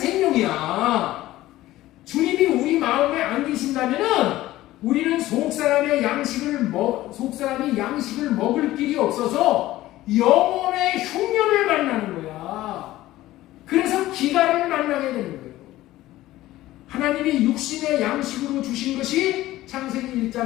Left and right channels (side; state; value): right; quieter; 16.0 dB